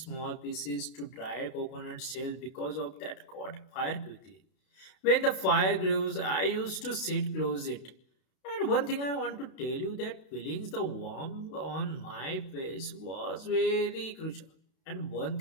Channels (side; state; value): right; late; 32 ms